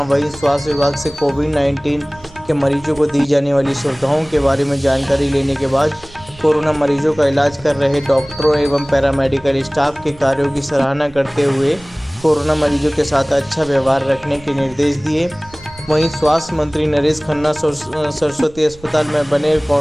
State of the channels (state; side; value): noise; right; rumble, 23 dB below the sound